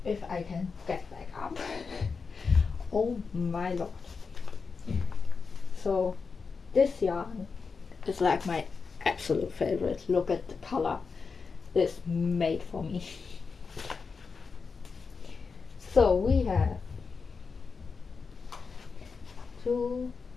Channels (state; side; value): quieter; right; 5.0 dB